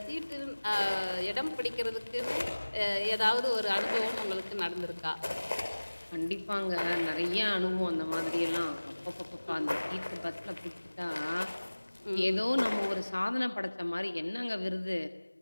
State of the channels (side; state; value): both; inverted; correlation -1.00